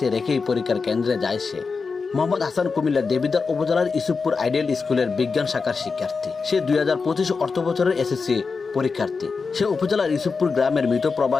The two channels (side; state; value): right; quieter; 4.8 dB